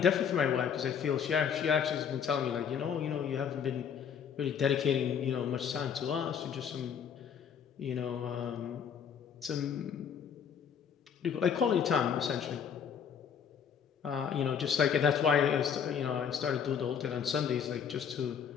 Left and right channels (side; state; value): right; quieter; 7.5 dB